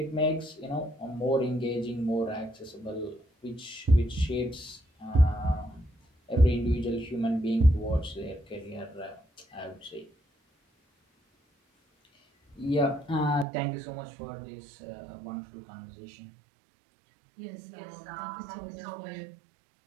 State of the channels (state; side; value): drops out; left; at 13.5 s